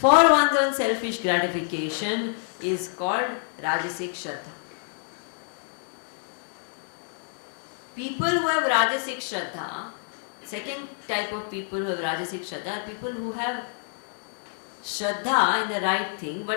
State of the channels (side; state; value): right; silent; 60 dB below the other